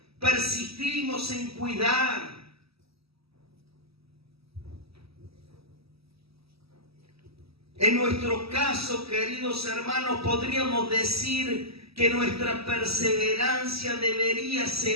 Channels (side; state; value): left; late; 0.76 ms